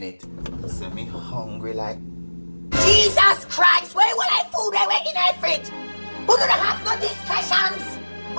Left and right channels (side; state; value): both; inverted; correlation -1.00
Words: say me hungry like Jesus Christ, where will I food I went in the fridge? Who don't have no discussions?